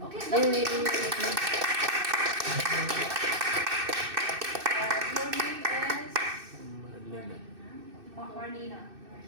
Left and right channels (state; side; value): late; left; 2.6 ms